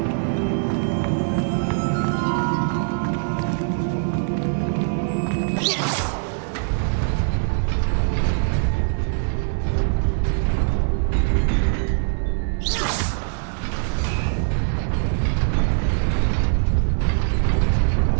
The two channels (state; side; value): silent; left; digital silence